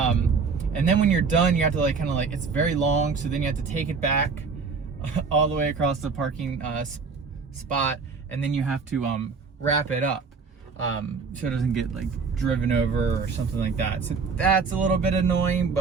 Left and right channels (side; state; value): left; quieter; 5.0 dB